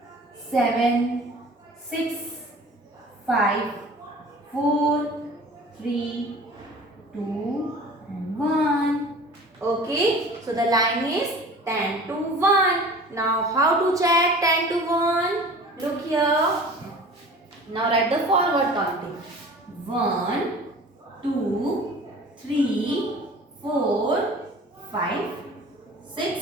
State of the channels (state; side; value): normal; both; correlation 0.43